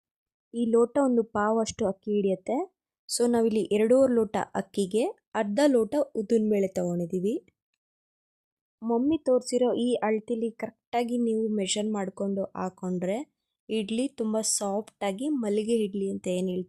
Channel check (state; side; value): identical; both; correlation 1.00